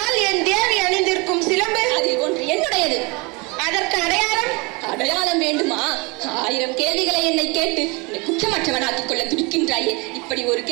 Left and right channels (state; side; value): quieter; left; 27.6 dB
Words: என் தேவி அணிந்திருக்கும் சிலம்பு அதில் ஒன்று என்னுடையது. அதற்கு அடையாளம்? அடையாளம் வேண்டுமா? 1000 கேள்விகளை என்னை கேட்டு என்னை குற்றமற்றவனாக்கிக் கொள்ள துடிக்கின்றாயே. இப்படி ஒரு